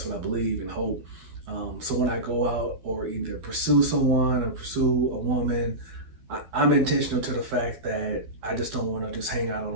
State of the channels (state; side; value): late; left; 12 ms